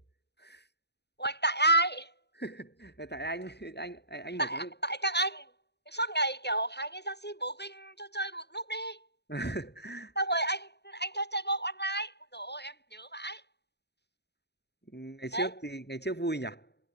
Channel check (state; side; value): late; right; 0.49 ms